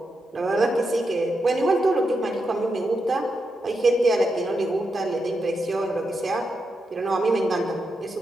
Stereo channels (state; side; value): normal; both; correlation 0.85